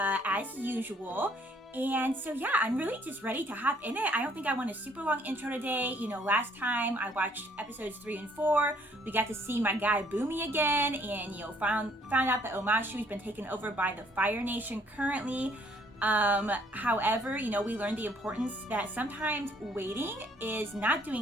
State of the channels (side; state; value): both; normal; correlation 0.63